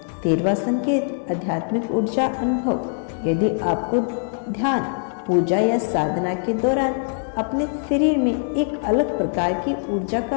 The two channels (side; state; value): right; silent; 64 dB below the other